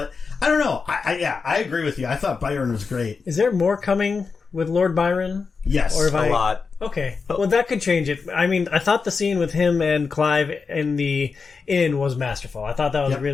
I don't know. I agree with you. I thought Byron was great. Is there more coming with Lord Byron? Yes. Or if A lot. Okay. Well, that could change it. I mean, I thought the scene with him and Clive in the inn was masterful. I thought that was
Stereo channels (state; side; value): quieter; right; 5.0 dB